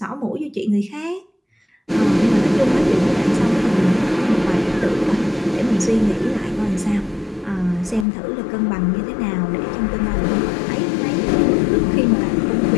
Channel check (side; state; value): right; drops out; at 8.1 s